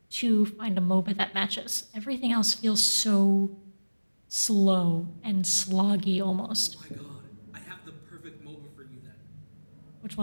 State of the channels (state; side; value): inverted; both; correlation -1.00